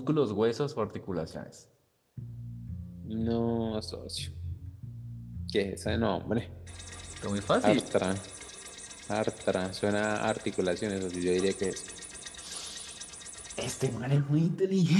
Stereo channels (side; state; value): both; identical; correlation 1.00